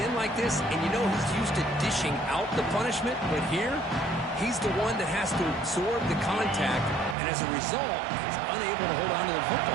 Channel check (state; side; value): drops out; left; at 7.2 s